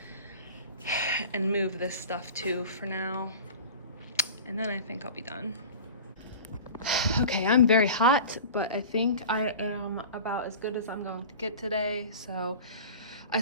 and move this stuff too for now. And then I think I'll be done. Okay, I'm very hot, but I think I am about as good as I'm going to get today. So I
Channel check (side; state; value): both; inverted; correlation -0.37